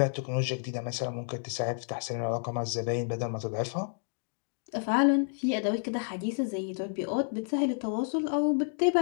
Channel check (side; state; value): right; silent; digital silence